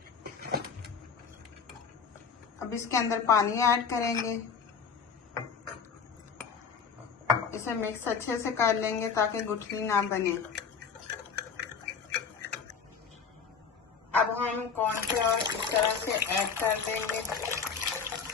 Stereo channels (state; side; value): quieter; right; 6.1 dB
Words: अब इसके अंदर पानी ऐड करेंगे। इसे मिक्स अच्छे से कर लेंगे ताकि गुठली ना बने। अब हम कॉर्नफ्लोर इस तरह से ऐड कर देंगे।